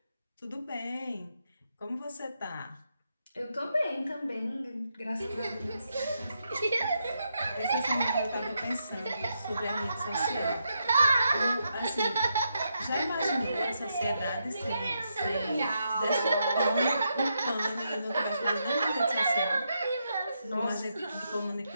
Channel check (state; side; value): inverted; both; correlation -0.82